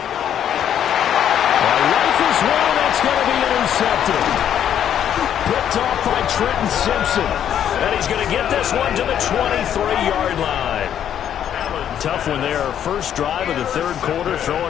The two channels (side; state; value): right; quieter; 9.7 dB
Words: Rifles one, that's going to be intercepted. Picked off by Trenton Simpson. And he's going to get this one to the 23-yard line. Tough one there. First drive of the third quarter, throw